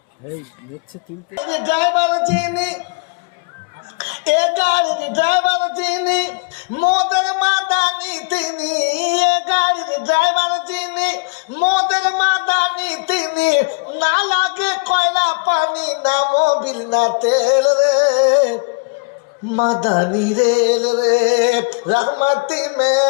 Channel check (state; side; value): quieter; right; 31.5 dB